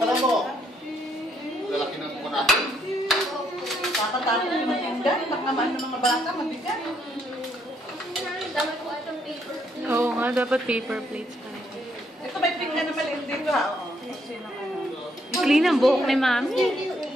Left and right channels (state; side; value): normal; both; correlation 0.72